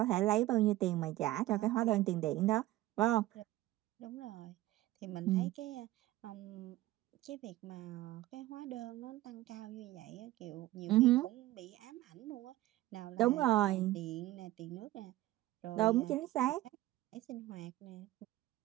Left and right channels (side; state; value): left; quieter; 16.4 dB